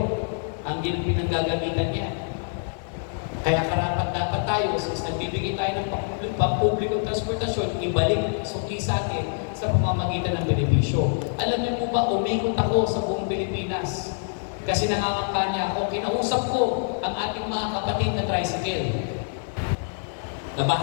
ang pinanggagamitan niya. Kaya karapat dapat tayo, since nagbibigay tayo ng pampublikong transportasyon, ibalik suki sa atin sa pamamagitan ng benepisyo. Alam niyo po ba, umikot ako sa buong Pilipinas. Kasi nangangakampanya ako, kinausap ko ang ating mga kapatid na tricycle.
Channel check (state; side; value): silent; right; digital silence